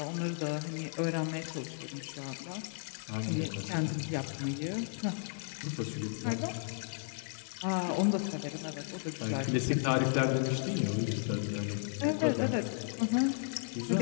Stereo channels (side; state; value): right; silent; digital silence